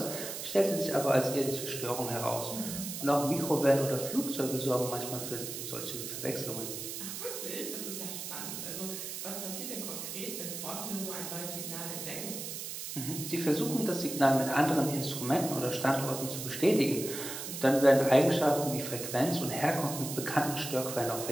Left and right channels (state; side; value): noise; right; hiss, 7 dB below the sound